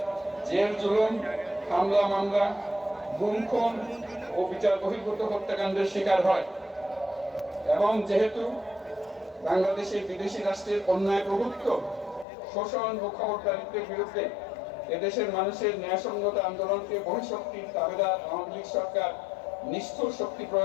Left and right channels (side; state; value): right; drops out; at 12.2 s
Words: জেল জুলুম, হামলা মামলা, গুম খুন ও বিচার বহির্ভূত হত্যাকাণ্ডের শিকার হয়। এবং যেহেতু বাংলাদেশে বিদেশি রাষ্ট্রের অন্যায় প্রভুত্ব, শোষণ ও খবরদারিত্বের বিরুদ্ধে এদেশের মানুষের ন্যায়সঙ্গত আন্দোলনকে বহিঃশক্তির দাবিদার আওয়ামী লীগ সরকার নিষ্ঠুর শক্তি